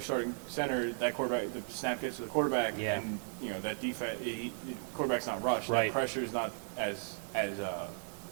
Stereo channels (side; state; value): left; silent; 54 dB below the other